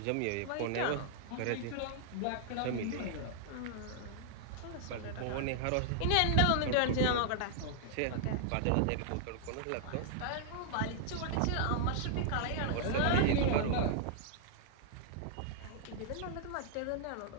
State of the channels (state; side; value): different; both; correlation -0.01